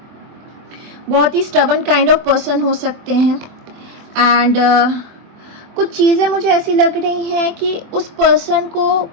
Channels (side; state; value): left; late; 24 ms